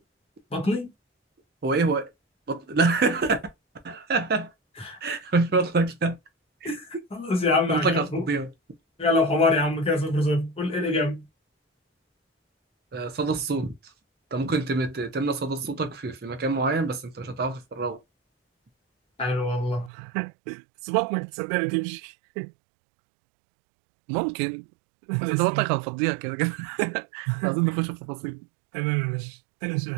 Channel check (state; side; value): drops out; left; at 19.9 s